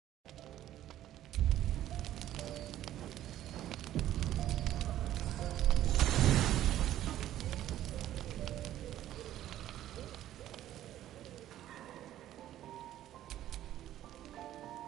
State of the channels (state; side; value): quieter; left; 12.7 dB